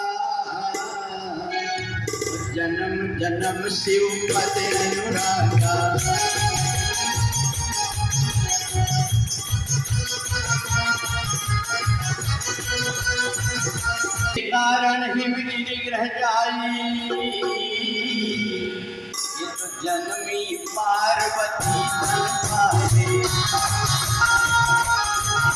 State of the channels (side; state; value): both; identical; correlation 1.00